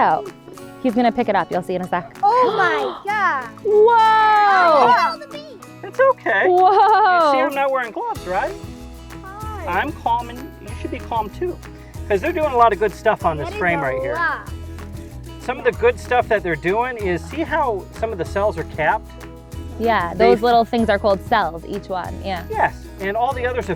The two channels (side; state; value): both; identical; correlation 1.00